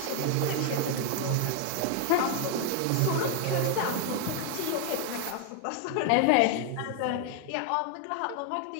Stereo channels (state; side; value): different; both; correlation 0.01